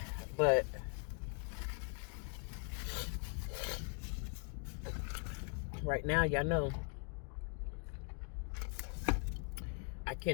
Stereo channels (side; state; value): right; quieter; 39.6 dB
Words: But right now, y'all know I